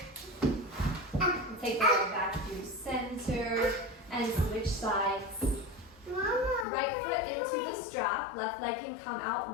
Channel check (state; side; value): drops out; right; at 6.7 s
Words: Take the leg back through center and switch sides. Mama, Right foot into the strap, left leg can come out